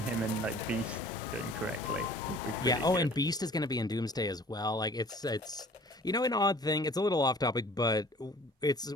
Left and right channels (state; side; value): normal; both; correlation 0.50